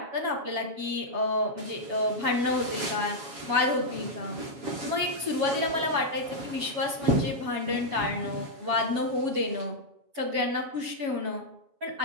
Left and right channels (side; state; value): left; late; 7.2 ms